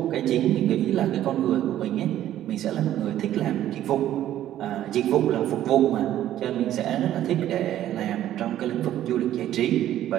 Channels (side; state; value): left; quieter; 12.4 dB